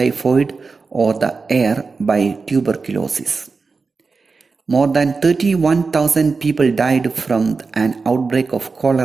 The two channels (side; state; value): left; quieter; 4.4 dB